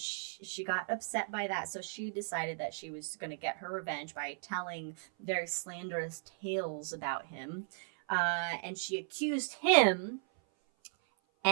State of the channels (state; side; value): silent; left; 54 dB below the other